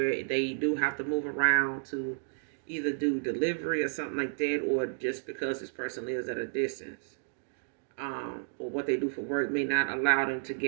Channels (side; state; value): left; silent; digital silence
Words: they do have to move around to either do delivery or something like that, or just because this person lives at a distance. Or what they do for work may not allow them to